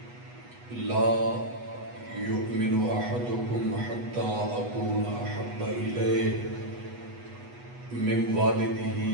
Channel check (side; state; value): left; late; 8.2 ms